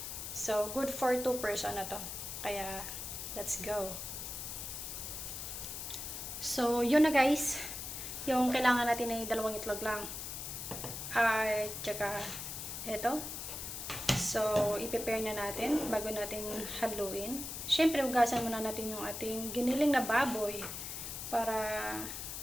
So, good for 2 person na to. Kaya, let's go. So, yun na guys. Yung kailangan natin ay dalawang itlog lang. At saka, ito. So, i-prepare na natin bago natin haluin. Siyempre, ugasan muna natin yung ating giniling na baboy para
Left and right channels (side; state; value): left; noise; hiss, 6 dB below the sound